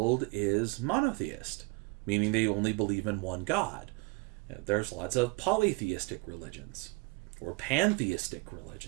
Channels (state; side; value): quieter; left; 26.0 dB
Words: is monotheist, meaning they only believe in one God. There's lots of polytheistic religions or pantheistic